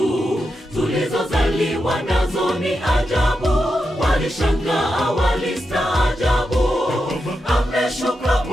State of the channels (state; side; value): normal; both; correlation 0.87